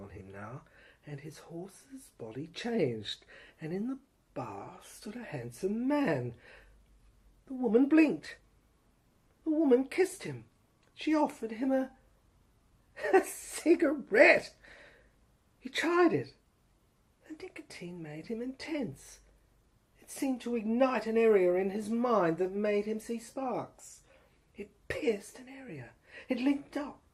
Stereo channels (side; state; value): both; identical; correlation 1.00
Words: him now, and his horse's body changed, and in the bar stood a handsome man. The woman blinked. The woman kissed him. She offered him a cigarette. He tried it. The nicotine made him intense. It seemed to ignite an area in his mind that made him see sparks. It pierced an area. It linked up